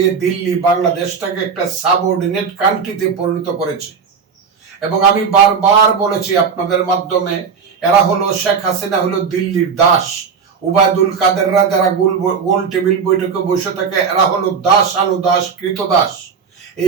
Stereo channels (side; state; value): left; quieter; 6.0 dB